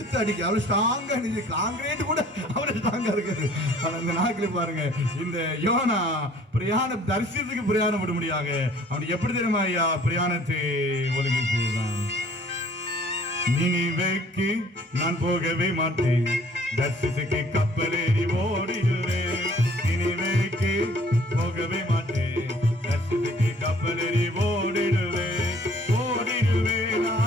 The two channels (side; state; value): both; normal; correlation 0.55